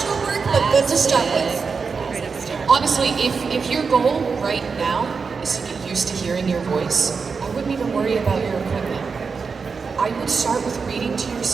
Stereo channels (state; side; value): quieter; left; 5.1 dB